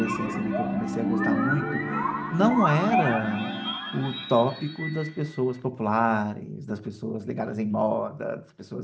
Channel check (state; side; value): identical; both; correlation 1.00